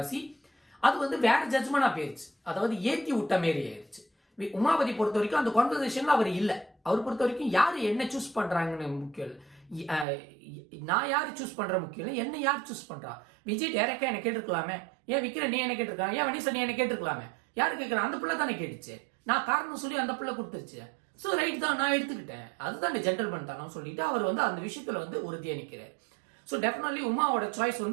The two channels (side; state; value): left; drops out; at 10.1 s